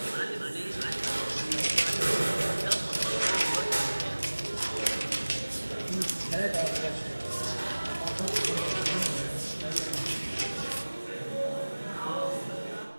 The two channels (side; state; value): both; inverted; correlation -1.00